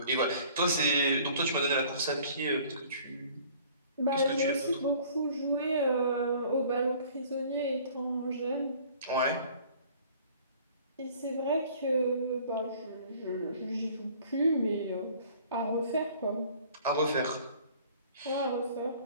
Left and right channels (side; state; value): both; inverted; correlation -0.52